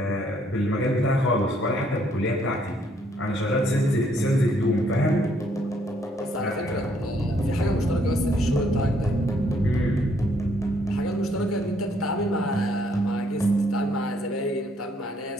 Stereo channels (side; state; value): both; normal; correlation 0.68